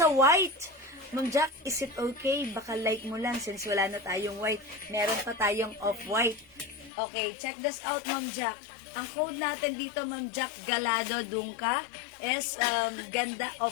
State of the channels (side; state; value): right; drops out; at 6.9 s